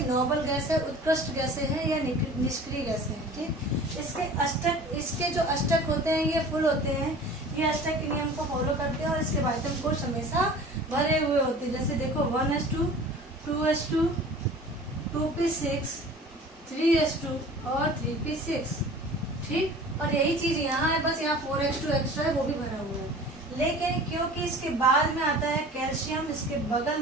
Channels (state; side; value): normal; both; correlation 0.42